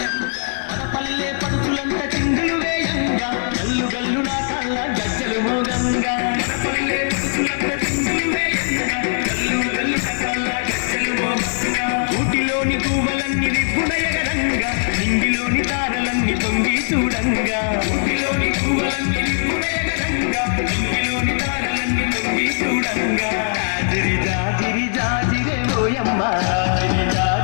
మన పల్లె పడుచులంత చిందులు వేయంగా గల్లు గల్లు నా కళ్ళ గజ్జలు మోగంగా మన పల్లె పడుచులంత చిందులు వేయంగా గల్లు గల్లు నా కళ్ళ గజ్జలు మోగంగా ఊటిలోని పూవలన్నీ రిప్పుడయగరంగా నింగిలోని తారలన్నీ తొంగి చూడంగా ఊటిలోని పూవలన్నీ రిప్పుడయగరంగా నింగిలోని తారలన్నీ తొంగి చూడంగా జాజిరి జాజిరి జాజిరే ఓయమ్మ జాజిరి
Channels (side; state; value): right; silent; digital silence